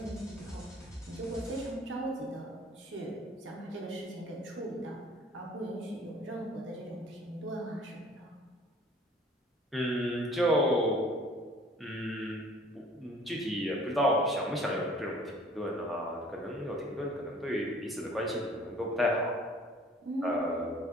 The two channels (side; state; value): both; normal; correlation 0.52